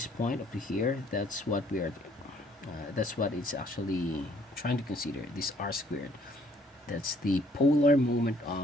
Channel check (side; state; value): both; normal; correlation 0.62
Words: point up to here. That's what we are. That's what it's actually trying to consider. This r squared. That's the polar moment